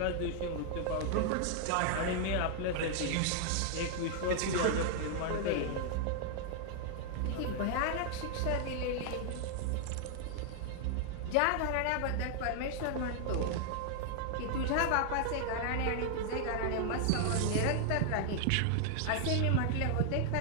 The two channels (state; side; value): different; both; correlation 0.00